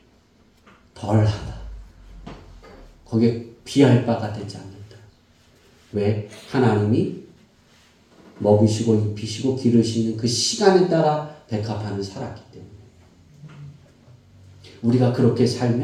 덜하다. 거기에 비할 바가 되지 않는다. 왜? 하나님이 먹이시고 입히시고 기르시는 그 시간에 따라 백합화는 살았기 때문에. 우리가 그렇게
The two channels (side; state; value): both; identical; correlation 1.00